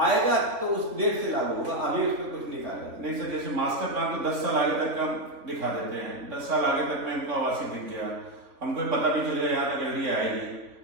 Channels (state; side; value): late; left; 3.5 ms